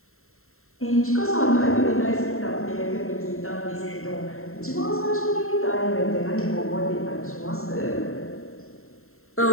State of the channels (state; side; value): late; right; 0.62 ms